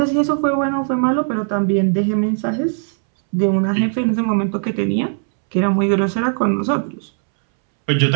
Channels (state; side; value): silent; left; 67 dB below the other